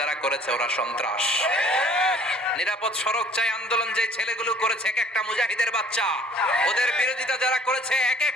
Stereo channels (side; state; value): both; normal; correlation 0.55